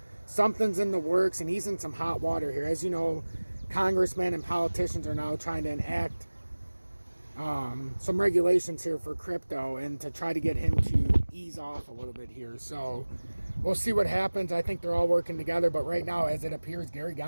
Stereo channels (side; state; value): both; inverted; correlation -1.00